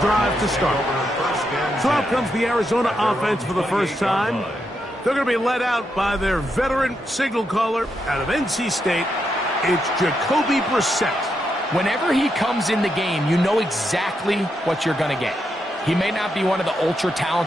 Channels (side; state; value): both; normal; correlation 0.82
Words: to start. So out comes the Arizona offense for the first time. They're going to be led out by their veteran signal caller out of NC State. It's Jacoby Brissett. Whenever he comes in the game, you know exactly what you're going to get. He may not be one of the